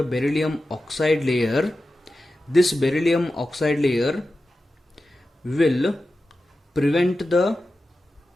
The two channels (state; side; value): normal; both; correlation 0.93